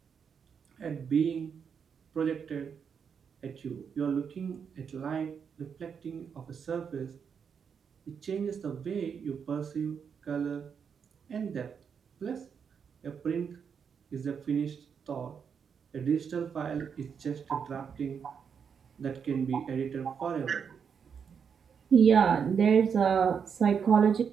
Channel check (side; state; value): left; quieter; 6.8 dB